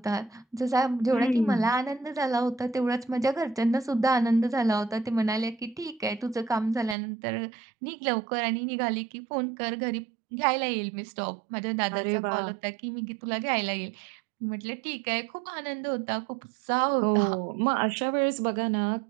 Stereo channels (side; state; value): left; drops out; at 7.0 s